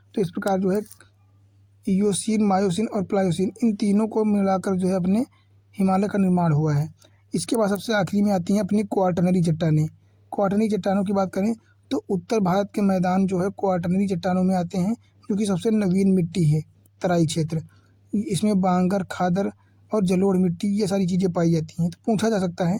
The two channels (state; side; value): identical; both; correlation 1.00